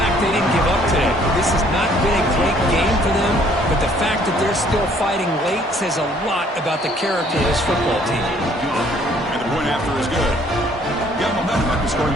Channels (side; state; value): both; normal; correlation 0.61